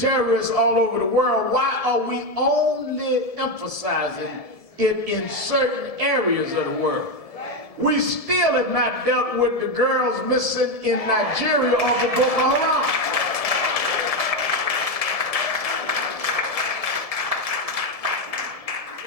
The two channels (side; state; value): right; late; 1.7 ms